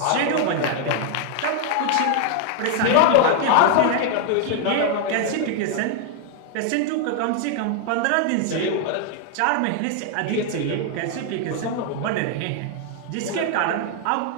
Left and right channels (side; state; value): both; different; correlation 0.00